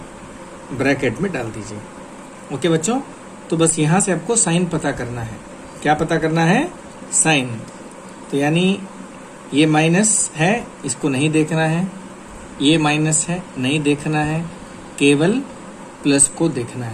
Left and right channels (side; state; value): both; identical; correlation 1.00